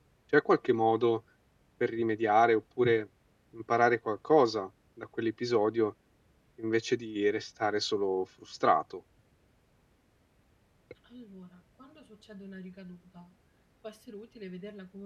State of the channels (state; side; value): identical; both; correlation 1.00